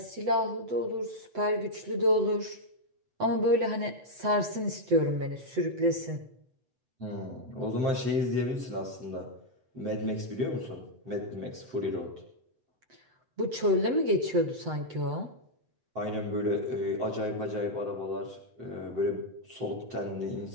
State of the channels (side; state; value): left; late; 7.9 ms